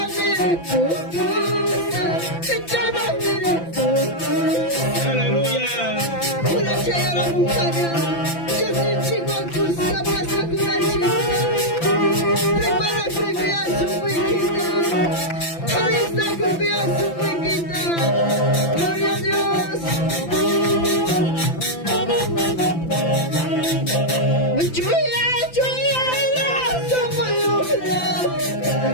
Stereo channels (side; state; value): right; late; 5.9 ms